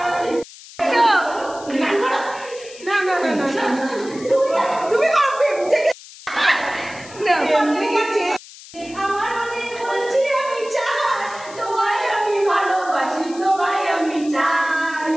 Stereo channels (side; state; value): left; noise; hiss, 18 dB below the sound